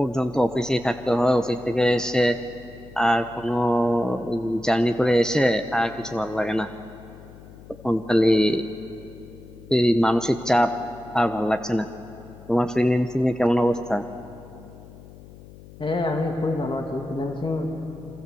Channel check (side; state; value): left; noise; hum, 19 dB below the sound